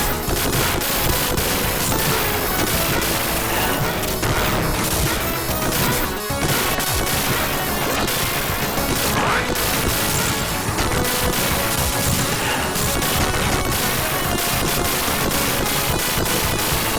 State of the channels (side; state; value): both; identical; correlation 1.00